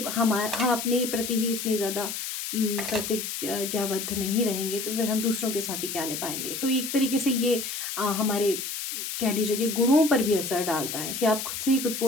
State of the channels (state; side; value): noise; left; hiss, 5 dB below the sound